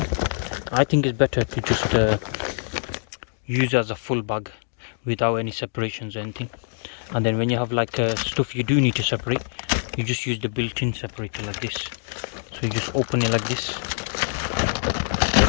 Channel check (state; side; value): silent; right; digital silence